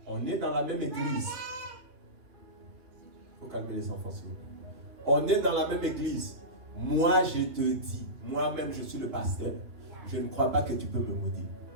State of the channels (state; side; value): late; left; 2.5 ms